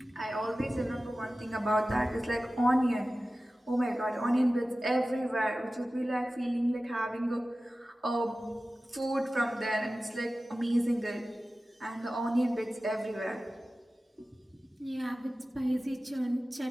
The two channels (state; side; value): normal; both; correlation 0.96